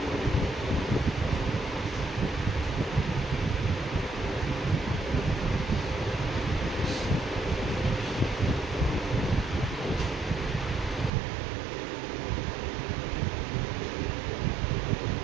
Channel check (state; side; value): drops out; left; at 11.1 s